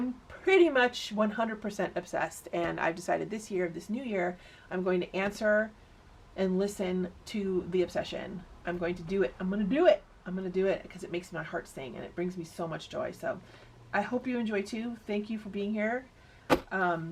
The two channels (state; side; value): identical; both; correlation 1.00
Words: pretty much 100% obsessed, and I've decided this year, this new year, I'm going to answer and listen to the obsession. I'm going to do it. I'm going to do it. I'm going to do it because it makes my heart sing and it brings me so much joy. So I hope you enjoy too. Thank you for being here.